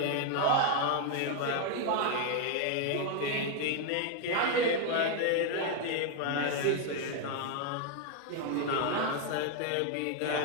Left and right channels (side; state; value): both; different; correlation 0.01